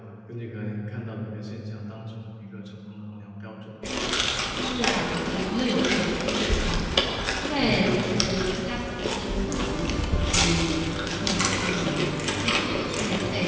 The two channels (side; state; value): both; identical; correlation 1.00